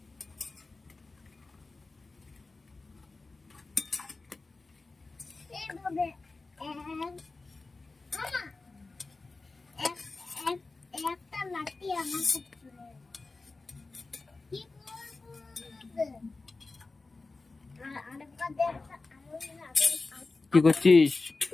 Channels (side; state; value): right; quieter; 3.6 dB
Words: একটা লাঠি আমার কি করছিস?